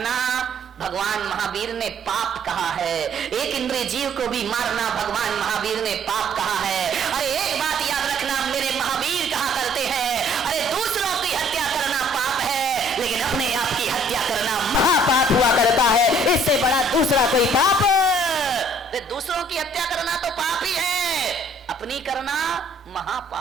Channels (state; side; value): normal; both; correlation 0.59